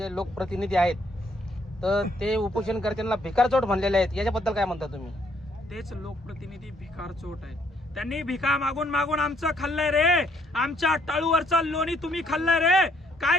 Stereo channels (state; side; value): normal; both; correlation 0.69